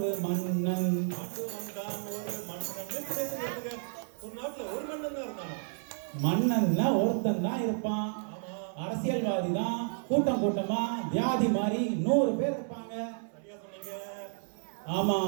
மன்னன். ஒரு நாட்டுல ஒரு மன்னன் தான் இருந்தான். மன்னன்னா ஒருத்தன் தான் இருப்பான். அரசியல்வாதி தான் கூட்டம் கூட்டமா வியாதி மாதிரி 100 பேர் இருப்பாங்க. சரியா சொன்னீங்க. ஆமா,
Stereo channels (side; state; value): left; silent; 57 dB below the other